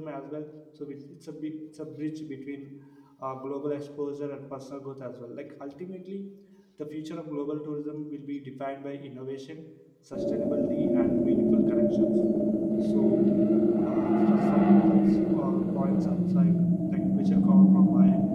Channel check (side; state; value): both; identical; correlation 1.00